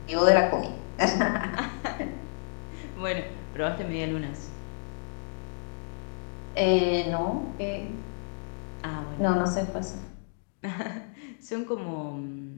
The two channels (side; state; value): right; silent; digital silence